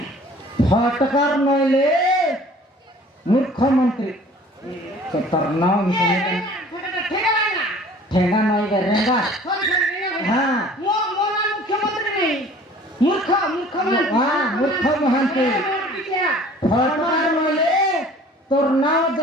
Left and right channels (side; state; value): both; normal; correlation 0.50